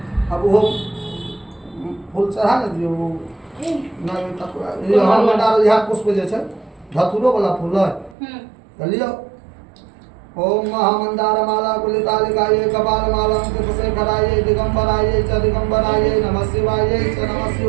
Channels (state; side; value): drops out; left; at 8.2 s